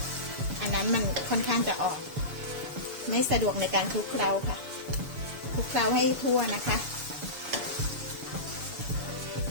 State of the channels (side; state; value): left; late; 7.0 ms